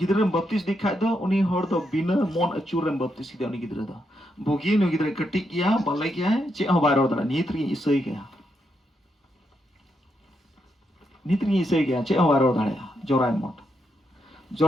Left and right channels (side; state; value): both; normal; correlation 0.81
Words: baptis dikhai do uni hor do bina mon acurem baptis ki uni gidre do bogi no gidre katik ya balai kya che ho bairo da nitri isai kya che ho bairo da ya jorai